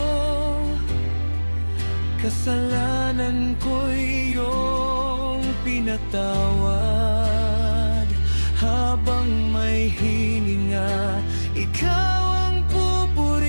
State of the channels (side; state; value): both; inverted; correlation -1.00